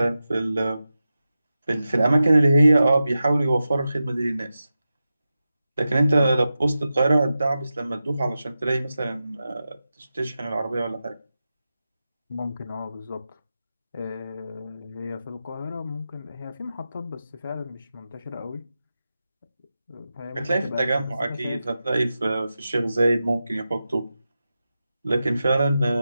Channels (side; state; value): both; inverted; correlation -0.92